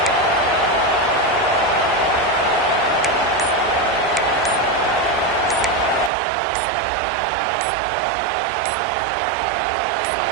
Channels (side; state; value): left; drops out; at 6.1 s